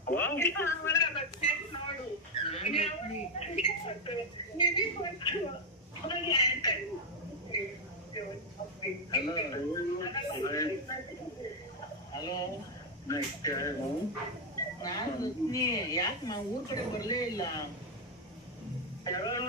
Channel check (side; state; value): both; normal; correlation 0.03